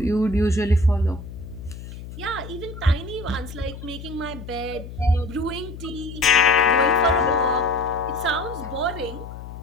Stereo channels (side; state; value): left; noise; hum, 12 dB below the sound